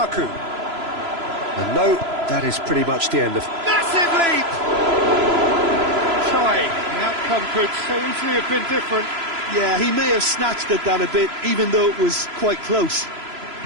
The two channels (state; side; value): late; left; 3.0 ms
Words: And no, that is pretty much the end of... Massive leap! Trying. The outcome could so easily have been different. Yeah, he may have snatched at that a bit, even though it was quite close.